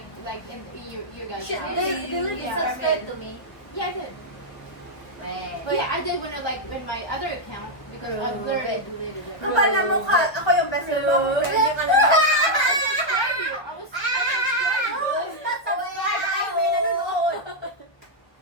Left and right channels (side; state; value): right; late; 1.4 ms